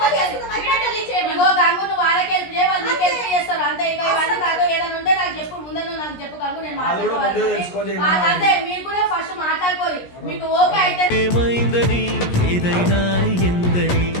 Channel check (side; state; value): right; late; 17 ms